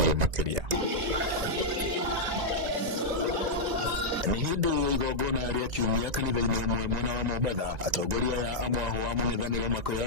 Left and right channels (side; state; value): left; late; 1.9 ms